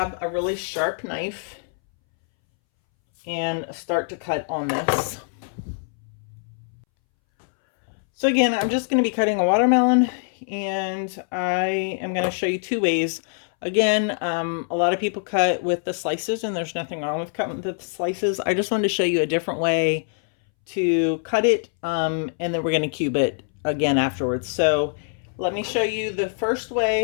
a really sharp knife and start to cut on this. So again, I'm just going to be cutting a watermelon, and I am going to show you 2 ways. Again, a lot of people cut with the slices, and there's nothing wrong with cutting with the slices. I just wanted to show you a different way to cut it, and then we're going to cube it again afterwards. So let me show you the first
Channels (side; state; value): right; silent; 63 dB below the other